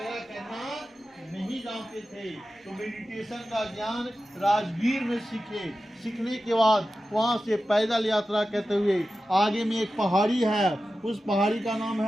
करना नहीं जानते थे, तो मेडिटेशन का ज्ञान राजगीर में सीखने के बाद वहां से पैदल यात्रा करते हुए आगे में एक पहाड़ी है, उस पहाड़ी का नाम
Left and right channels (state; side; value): normal; both; correlation 0.93